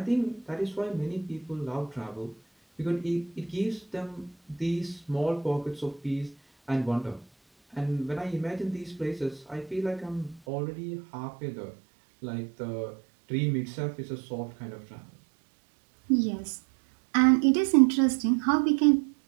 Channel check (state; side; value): drops out; left; at 10.4 s